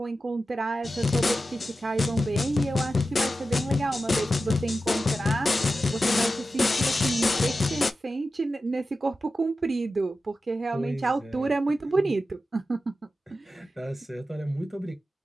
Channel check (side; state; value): both; normal; correlation 0.92